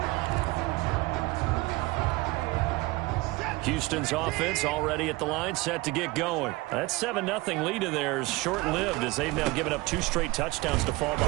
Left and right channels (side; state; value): left; quieter; 21.6 dB